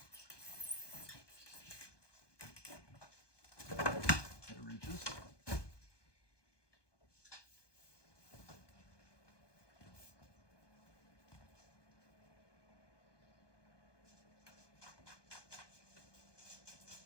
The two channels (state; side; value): late; right; 1.2 ms